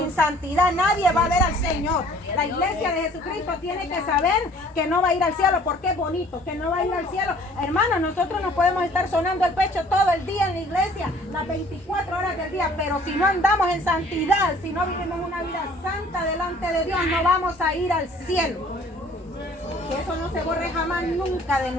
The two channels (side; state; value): both; normal; correlation 0.54